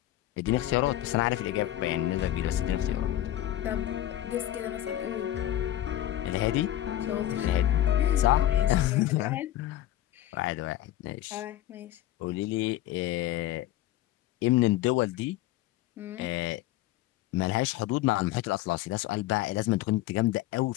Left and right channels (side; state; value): right; quieter; 13.7 dB